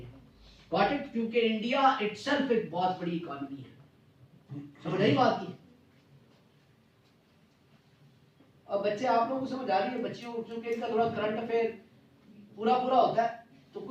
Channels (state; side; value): identical; both; correlation 1.00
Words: Got it? क्योंकि इंडिया इटसेल्फ एक बहुत बड़ी इकोनॉमी है। समझ आई बात की? अब बच्चे, आप लोगों को समझ आ रही है? बच्चियों को क्योंकि इनका थोड़ा करंट अफेयर पूरा पूरा होता है तो